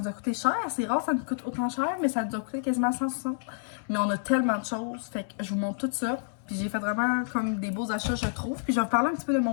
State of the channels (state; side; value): silent; right; 59 dB below the other